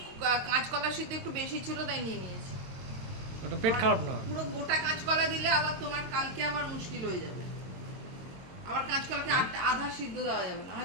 কাঁচকলা সিদ্ধ একটু বেশি ছিল তাই নিয়ে নিয়েছি। ওটা পেট খারাপ না। পুরো গোটা কাঁচকলা দিলে আবার তোমার কালকে আবার মুশকিল হয়ে যাবে। আবার কাঁচকলাকে আধা সিদ্ধ দেওয়া যাবে না,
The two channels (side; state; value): left; late; 22 ms